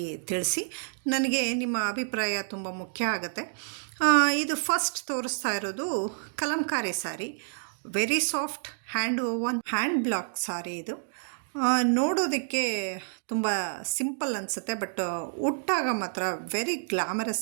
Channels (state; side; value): silent; left; digital silence